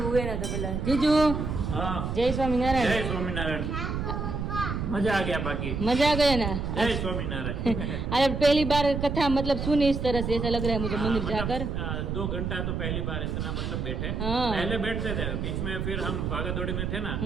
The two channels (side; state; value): right; noise; rumble, 2 dB below the sound